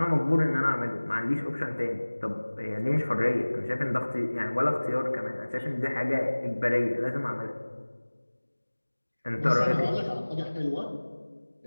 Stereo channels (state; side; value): inverted; both; correlation -1.00